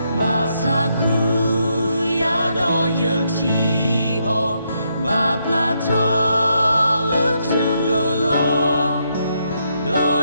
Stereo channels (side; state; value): both; inverted; correlation -0.78